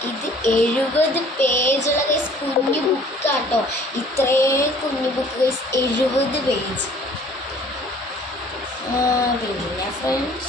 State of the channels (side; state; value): both; normal; correlation 0.54